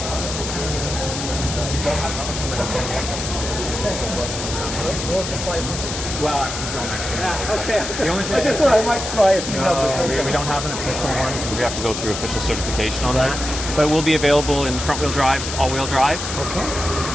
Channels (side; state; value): left; noise; hiss, 6 dB below the sound